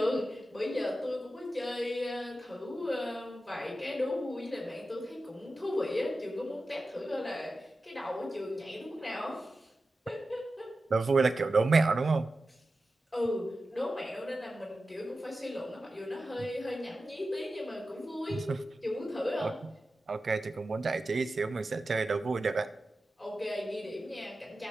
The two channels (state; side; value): normal; both; correlation 0.93